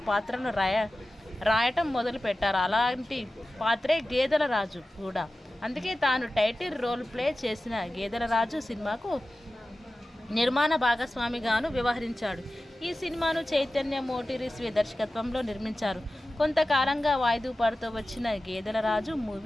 పాత్రను రాయటం మొదలు పెట్టారు. అలాంటి పాత్రే గేదెల రాజు కూడా. అందుకే తాను టైటిల్ రోల్ ప్లే చేసిన గేదెల రాజు సినిమాకు నిర్మాణ భాగస్వామిగాను వ్యవహరించాడు. ఈ సినిమాను చైతన్య మోటూరి దర్శకత్వంలో నిర్మించారు. కొంతకాలంగా వాయిదా పడుతూ వచ్చిన గేదెల రాజు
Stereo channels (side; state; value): both; normal; correlation 0.95